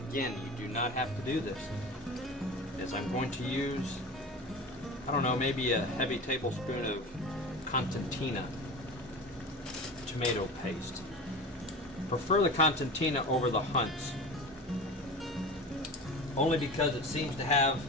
you do not have to do this, is I'm going to use, I don't know, maybe a heavy tablespoon of Constantina tomato paste. prefer the Constantina over the Hunts, only because it seems to have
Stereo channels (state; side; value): normal; both; correlation 0.33